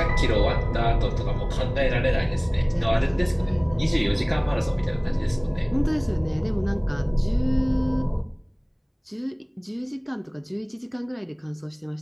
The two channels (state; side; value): identical; both; correlation 1.00